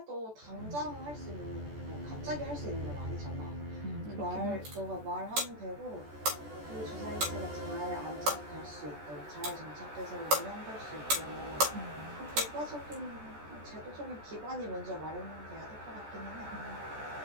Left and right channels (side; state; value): left; late; 14 ms